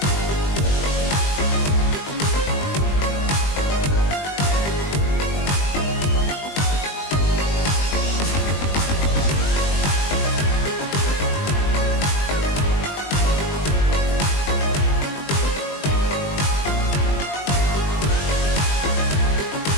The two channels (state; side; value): late; right; 20 ms